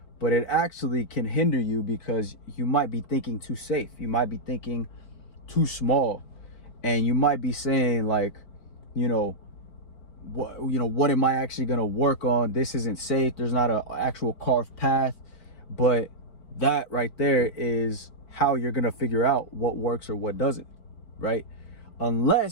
but it actually can hinder you because you might be thinking too safe, you might be thinking too small. And you might be saying like, what am I actually going to work on? This isn't safe. There's not an actual carved path. But that right there is how you're going to figure out what works or what doesn't, right?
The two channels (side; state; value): right; late; 4.5 ms